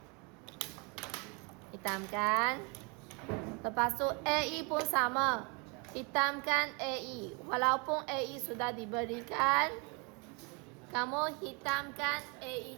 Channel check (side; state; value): left; quieter; 31.7 dB